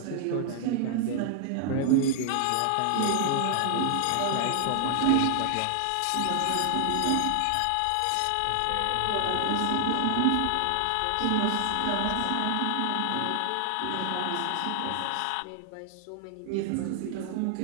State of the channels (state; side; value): different; both; correlation 0.00